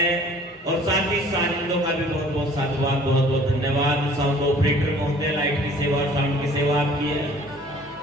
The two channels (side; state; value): both; normal; correlation 0.52